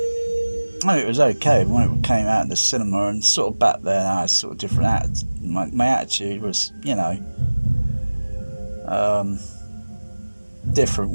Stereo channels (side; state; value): both; inverted; correlation -1.00